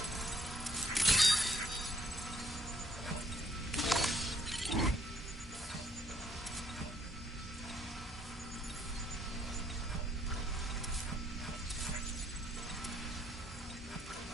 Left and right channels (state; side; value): normal; both; correlation 0.65